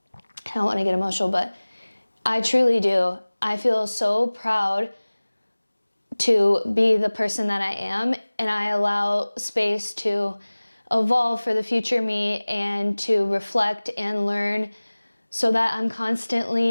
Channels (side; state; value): both; inverted; correlation -1.00